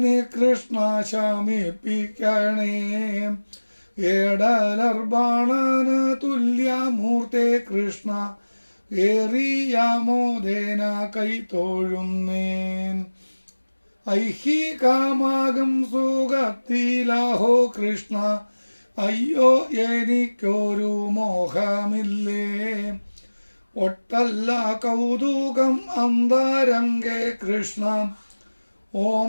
കൃഷ്ണ ശമിപ്പിക്കണേ ഏടലർബാണന് തുല്യമൂർത്തെ കൃഷ്ണ ഏറിയാമോദേന കൈത്തോഴുന്നേൻ ഐഹികമാകും സുഖത്തിലാഹോ കൃഷ്ണ അയ്യോ എനിക്കൊരു മോഹമില്ലേ ഒട്ടല്ല കൗതുകം അന്തരംഗേ കൃഷ്ണ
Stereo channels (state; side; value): inverted; both; correlation -1.00